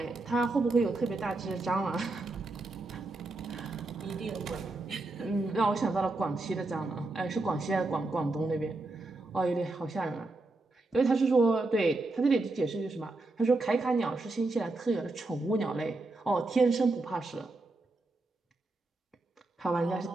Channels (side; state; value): left; quieter; 3.1 dB